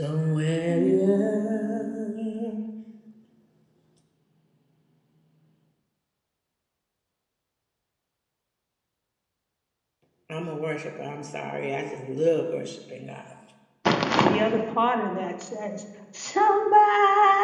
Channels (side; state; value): both; identical; correlation 1.00